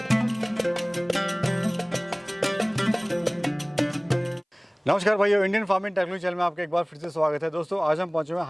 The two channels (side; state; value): both; identical; correlation 1.00